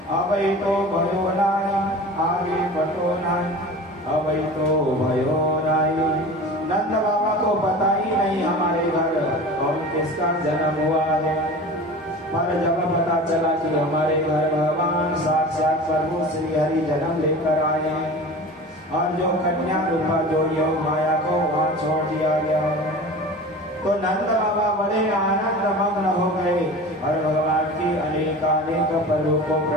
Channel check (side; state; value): both; normal; correlation 0.36